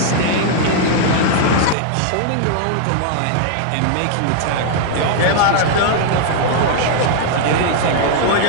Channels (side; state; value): both; different; correlation 0.00